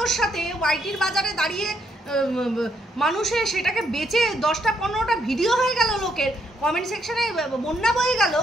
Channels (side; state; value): both; normal; correlation 0.74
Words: সাথে, ওয়াইটির বাজারে দাঁড়িয়ে মানুষের সেটাকে বেচে 10টা 15টা ভিডিও হয়ে গেল, লোকের কমেন্ট সেকশনে বন্যা বয়ে গেল,